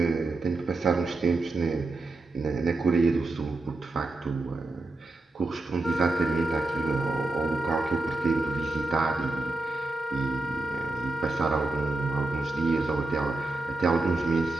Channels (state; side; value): quieter; left; 3.2 dB